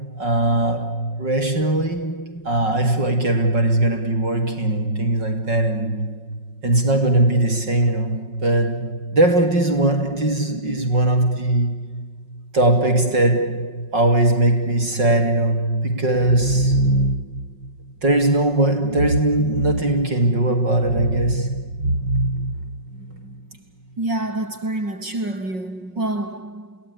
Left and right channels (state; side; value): late; left; 5.4 ms